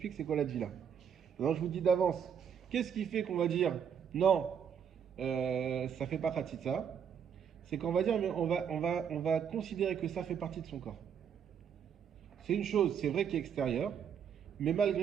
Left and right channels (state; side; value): quieter; left; 7.9 dB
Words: c'est quoi la dvila. Maintenant, je vous dis d'avance, qu'est-ce qui fait qu'on va dire, non, ça fait pas khatitsa? C'est qu'on va dire, mais on va considérer que ça fait partie de son corps. C'est une chose, c'est vrai, qui est extérieure, mais